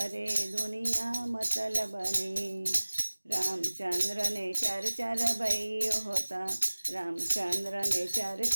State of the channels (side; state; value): both; inverted; correlation -1.00